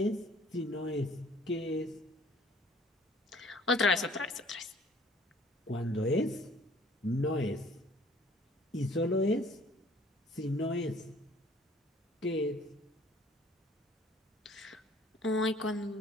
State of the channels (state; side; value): normal; both; correlation 0.55